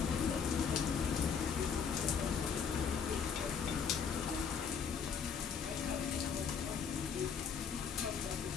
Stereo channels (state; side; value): quieter; right; 6.6 dB